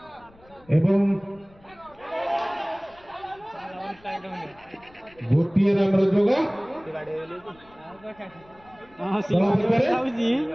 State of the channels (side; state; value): left; noise; rumble, 28 dB below the sound